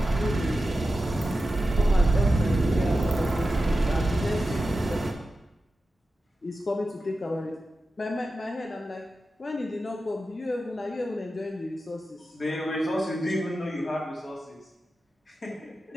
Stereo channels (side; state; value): both; normal; correlation 0.92